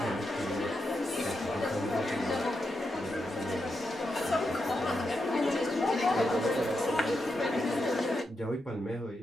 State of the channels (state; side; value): normal; both; correlation 0.85